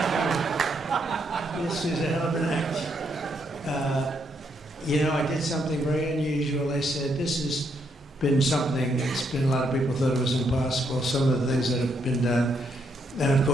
you. This is a hell of an act. You know, I did something very unusual. I said, this has been something that's been, a lot of people thought it was impossible, some of the things that have been done. And of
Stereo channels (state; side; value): normal; both; correlation 0.75